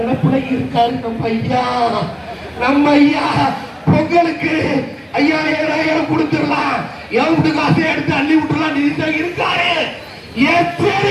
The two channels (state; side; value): identical; both; correlation 1.00